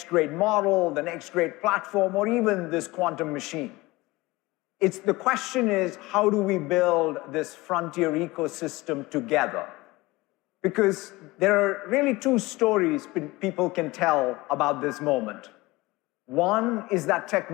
great model, the next great platform, or even this quantum machine. The question is, how do we build this frontier ecosystem together? Because there are really 2 stories people can tell about this moment. One is that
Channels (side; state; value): right; quieter; 21.1 dB